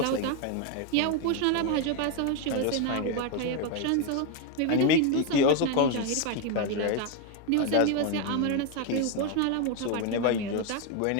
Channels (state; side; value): different; both; correlation 0.01